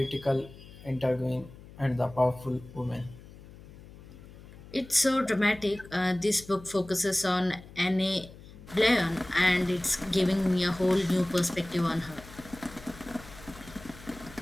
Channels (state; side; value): noise; left; hum, 19 dB below the sound